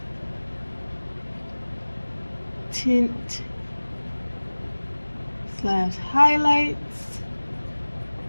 tint / highlights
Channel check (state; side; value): inverted; both; correlation -1.00